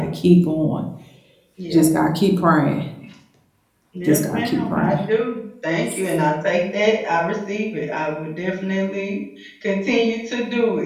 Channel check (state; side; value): identical; both; correlation 1.00